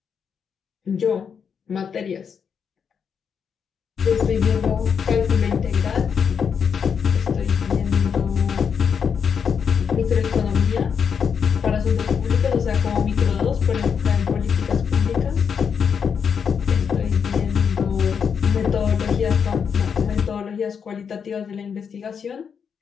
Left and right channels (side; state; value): right; quieter; 6.8 dB